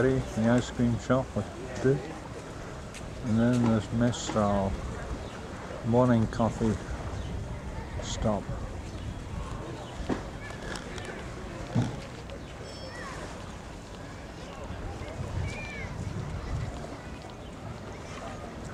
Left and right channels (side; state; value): both; identical; correlation 1.00